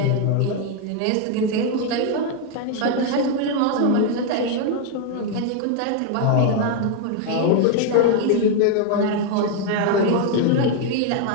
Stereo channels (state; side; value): different; both; correlation 0.01